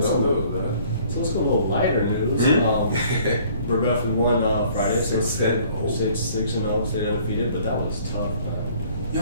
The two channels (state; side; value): inverted; both; correlation -0.57